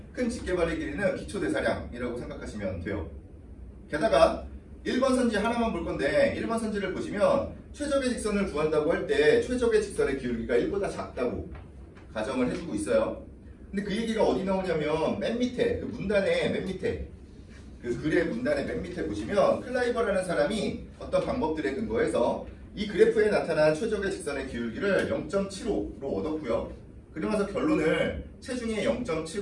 큰 직계발의 길이는 기초대사량이라고 생각하시면 돼요. 게다가 1번 선지 하나만 볼 건데 1번 선지를 보시면 최적의 직선을 구한다고 할 때 최적의 직선의 기울기가 1보다 작다고 가정을 해주고 있어요. 근데 그 얘기가 어디 나오냐면 맨 밑에 그 문단의 맨 밑에 그 글의 문단의 맨 밑에 보시면 클라이버라는 사람이 어떤 방법들에 근거해서 이 그래프에 나타난 최적의 직선의 기울기를 0.75로 얻었고요. 그러면서 결론을 체중의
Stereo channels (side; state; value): both; identical; correlation 1.00